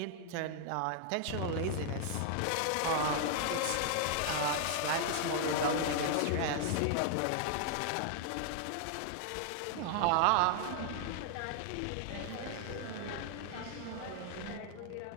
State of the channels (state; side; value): different; both; correlation 0.00